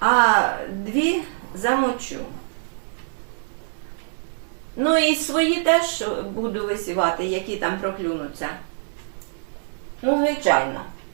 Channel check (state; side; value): silent; left; digital silence